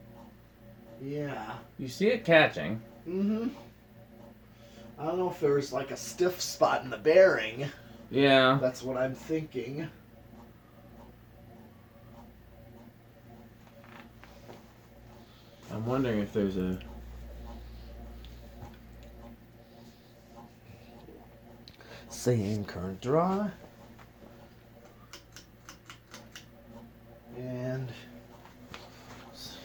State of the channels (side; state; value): both; identical; correlation 1.00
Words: yeah. You see it catching. Mm-hmm. I don't know if there's like a stiff spot in the bearing. Yeah. That's what I'm thinking. I'm wondering if there's a... Same current draw. And